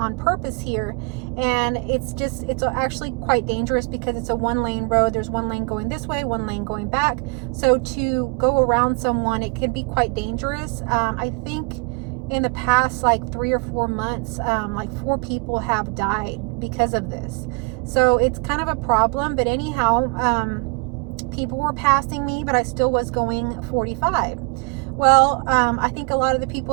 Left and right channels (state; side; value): quieter; left; 32.6 dB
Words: purpose here. And it's actually quite dangerous because it's a one-lane road. There's one lane going this way, one lane going back. So to go around someone, it can be quite dangerous. I think in the past like 3 or 4 months, like 4 people have died because of this. So it's kind of a problem. But anyhow, people were passing me, but I still was going 45. Well, I think a lot of the